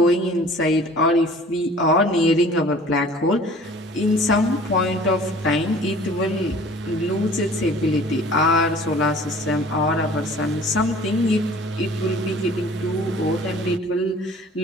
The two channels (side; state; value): both; normal; correlation 0.49